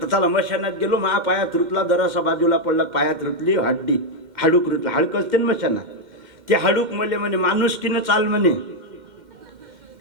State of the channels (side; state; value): left; late; 2.1 ms